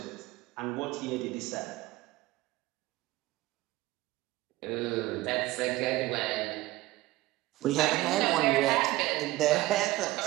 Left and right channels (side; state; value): left; quieter; 17.9 dB